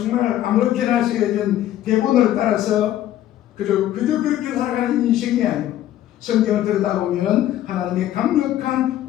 아무렇게나 쓰여진 대본을 따라서 그저 그렇게 살아가는 인생이 아니고 성경을 들여다보면 하나님의 강력한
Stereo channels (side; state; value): right; quieter; 12.8 dB